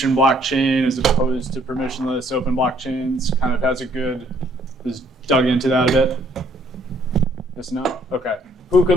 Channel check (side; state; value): both; normal; correlation 0.65